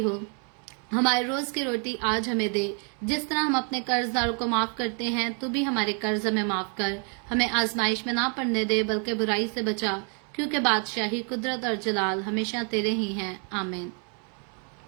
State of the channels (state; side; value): quieter; left; 39.9 dB